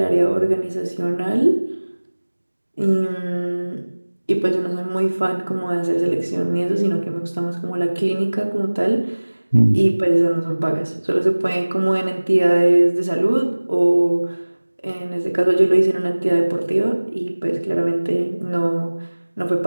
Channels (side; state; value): both; inverted; correlation -1.00